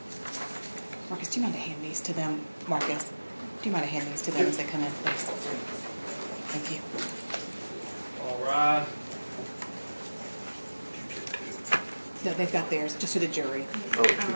Marcus, do you mind to hand these to them? Marcus, do you mind to hand these to them as they come in, please? Thank you. All right. No, they've got theirs, just to the jury. I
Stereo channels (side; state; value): both; inverted; correlation -1.00